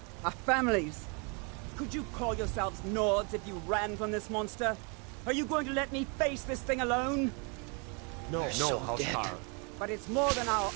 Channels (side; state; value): left; quieter; 34.3 dB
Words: our families. Could you call yourselves Nords if you ran from this monster? Are you going to let me face this thing alone? No, Housecar. But it's more than our